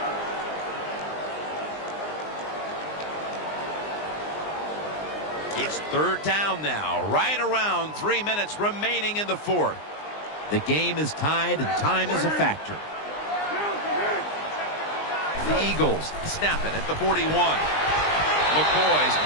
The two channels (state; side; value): late; right; 20 ms